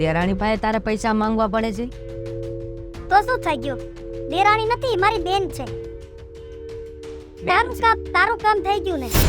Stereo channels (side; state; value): both; identical; correlation 1.00